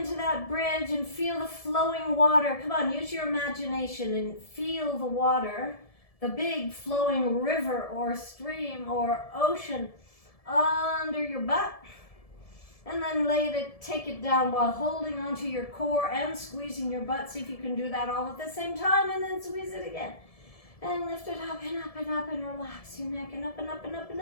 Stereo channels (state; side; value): late; right; 1.7 ms